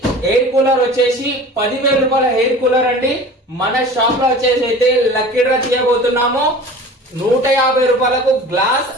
ఎయిర్ కూలర్ వచ్చేసి 10,000 రూపాయల ఎయిర్ కూలర్ అండి. మన షాప్ లో వచ్చేసి అయితే లక్కీ డ్రా తీయబోతున్నాము. 150 రూపాయలకు గ్లాస్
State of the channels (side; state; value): both; normal; correlation 0.40